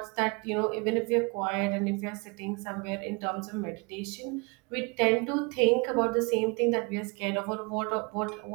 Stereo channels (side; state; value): left; quieter; 29.7 dB